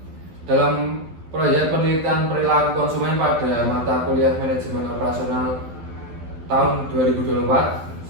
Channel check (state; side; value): late; left; 12 ms